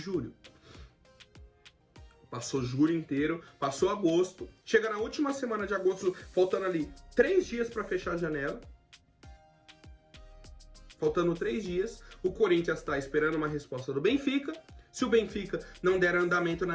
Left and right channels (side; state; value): both; identical; correlation 1.00